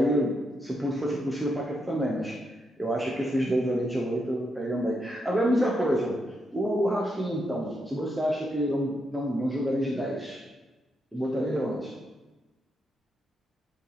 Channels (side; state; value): both; normal; correlation 0.81